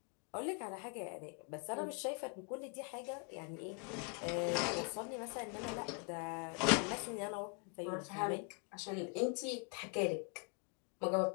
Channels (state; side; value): quieter; right; 34.4 dB